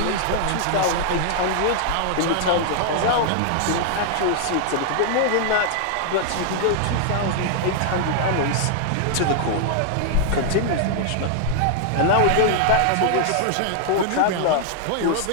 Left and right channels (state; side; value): different; both; correlation 0.00